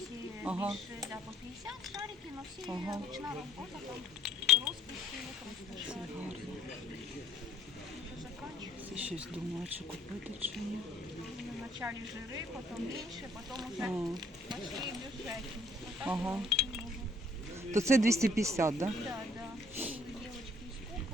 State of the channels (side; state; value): both; normal; correlation 0.61